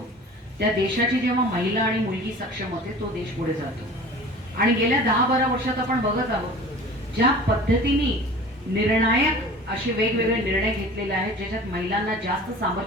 त्या देशाची जेव्हा महिला आणि मुलगी सक्षम होते तो देश पुढे जातो। आणि गेल्या 10-12 वर्षात आपण बघत आहोत ज्या पद्धतीने निर्णायक असे वेगवेगळे निर्णय घेतलेले आहेत ज्याच्यात महिलांना जास्त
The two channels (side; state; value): both; normal; correlation 0.41